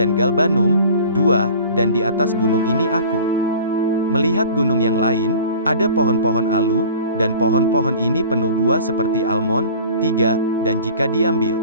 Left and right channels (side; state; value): both; inverted; correlation -0.44